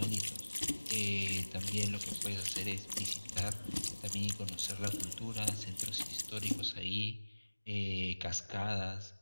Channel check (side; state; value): both; inverted; correlation -1.00